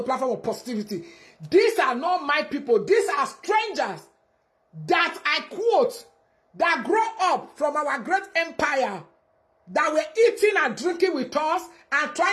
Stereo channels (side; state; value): both; identical; correlation 1.00